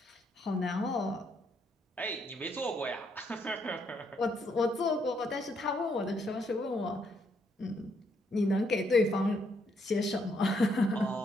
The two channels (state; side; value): normal; both; correlation 0.74